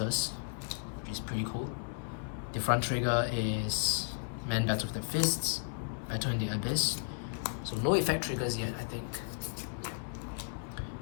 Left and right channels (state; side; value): silent; right; digital silence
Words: which is pretty cool. The front trigger is Man Battle with the Fists, Battle in the Abyss. So no effect triggers yet, I think. Yeah.